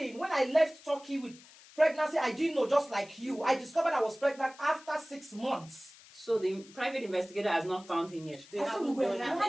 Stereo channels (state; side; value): noise; left; hiss, 22 dB below the sound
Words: When I left Turkey with pregnancy, I didn't know, just like you. I discovered I was pregnant after 6 months. So the private investigator has not found him yet. They I said haven't we were done it.